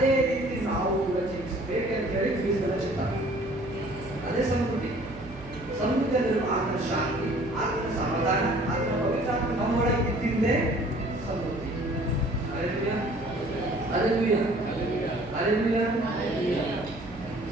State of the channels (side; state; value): right; noise; hum, 17 dB below the sound